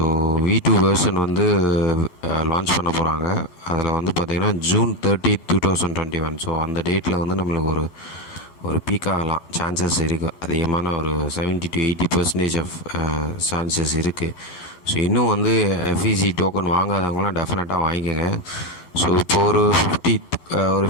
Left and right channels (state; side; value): late; right; 11 ms